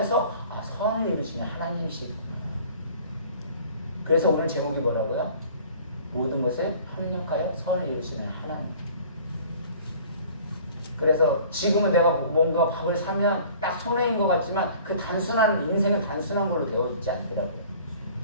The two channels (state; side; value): inverted; both; correlation -0.49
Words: 선을 이루시는 하나님이시구나. 그래서 오늘 제목이 뭐라고요? 모든 것에 협력하여 선을 이루시는 하나님. 그래서 지금은 내가 뭔가 밥을 사면 딱 손해인 것 같지만 그 단순한 인생은 단순한 걸로 되어 있지 않더라고요.